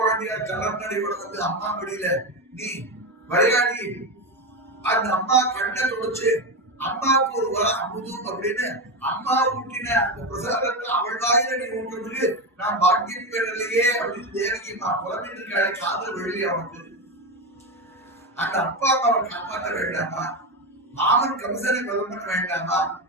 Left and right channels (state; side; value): normal; both; correlation 0.15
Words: கலர்நடையோட அம்மா மடியில நீ விளையாடி அந்த அம்மா கண்ணை தொடச்சு அம்மாவுக்கு ஒரு அமுதும் அப்படின்னு அம்மா ஊட்டின அந்த பிரசாதத்தை அவள் வாயில நீ ஊட்டுறதுக்கு நான் பாக்கியம் பெறலையே அப்படின்னு தேவகி அம்மா புலம்பிட்டு இருக்காளே, காதல் வெளியே அவனுக்கு. அந்த அப்பா அம்மாவை காப்பாற்ற வேண்டாமா? மாமன் கம்சனை கொலை பண்ண வேண்டாமா?